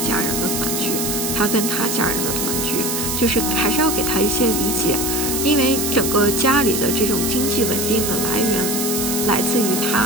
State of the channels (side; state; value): right; noise; hiss, 1 dB below the sound